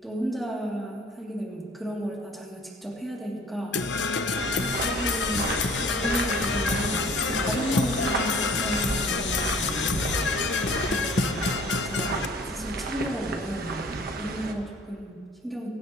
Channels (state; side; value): normal; both; correlation 0.52